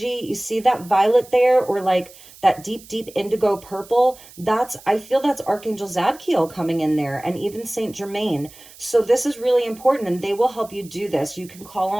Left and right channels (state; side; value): noise; right; hiss, 21 dB below the sound